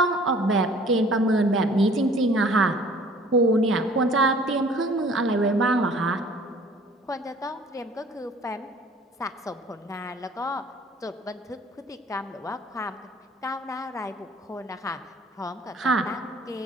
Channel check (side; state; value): both; normal; correlation 0.52